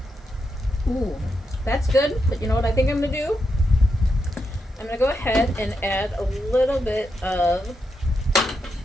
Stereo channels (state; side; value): normal; both; correlation 0.84